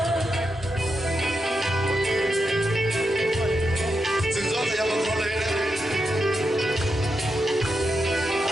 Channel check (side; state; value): both; normal; correlation 0.86